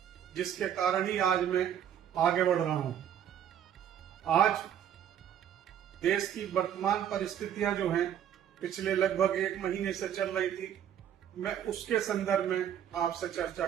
जिसके कारण ही आज मैं आगे बढ़ रहा हूं। आज देश की वर्तमान परिस्थितियां जो हैं, पिछले लगभग 1 महीने से चल रही थी, मैं उसके संदर्भ में आपसे चर्चा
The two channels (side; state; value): left; quieter; 9.7 dB